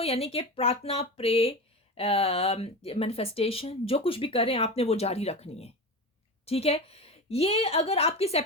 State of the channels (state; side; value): normal; both; correlation 0.25